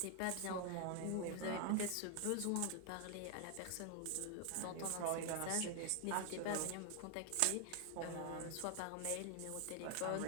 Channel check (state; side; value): different; both; correlation 0.00